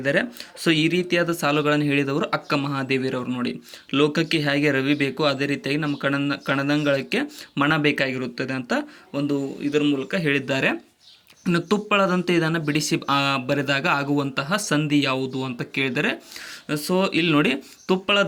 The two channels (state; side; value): identical; both; correlation 1.00